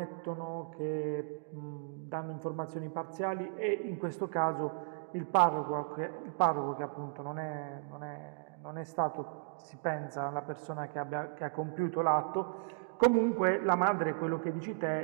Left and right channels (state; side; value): silent; left; digital silence